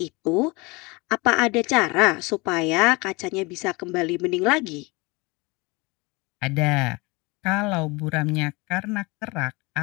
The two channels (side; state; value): right; quieter; 25.5 dB